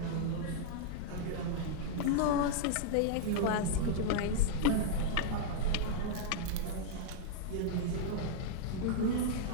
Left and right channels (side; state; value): both; different; correlation -0.01